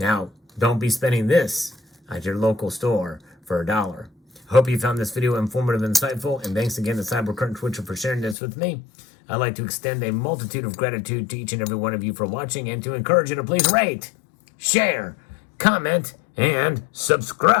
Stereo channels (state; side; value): drops out; right; at 8.3 s